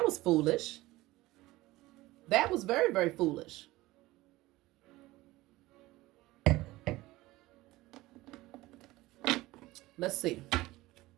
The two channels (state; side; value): quieter; left; 18.6 dB